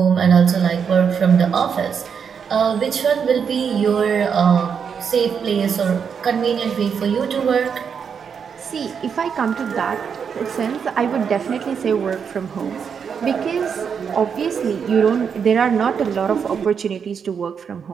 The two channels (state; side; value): quieter; left; 6.8 dB